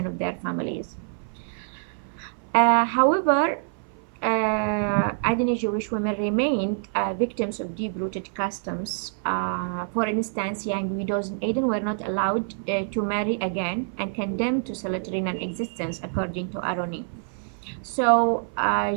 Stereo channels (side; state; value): left; silent; 56 dB below the other